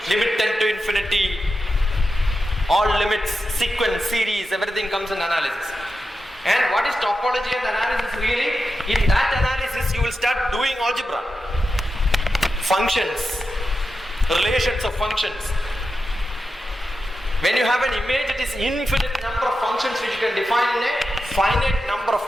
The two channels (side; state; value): both; normal; correlation 0.90